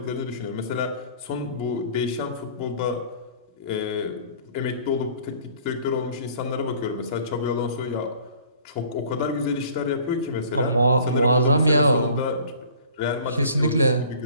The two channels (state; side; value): inverted; both; correlation -0.50